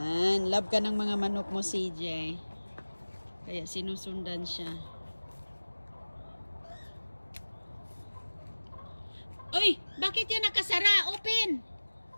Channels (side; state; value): both; inverted; correlation -1.00